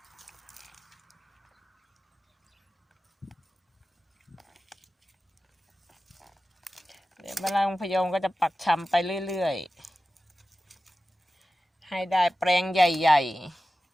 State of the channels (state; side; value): normal; both; correlation 0.95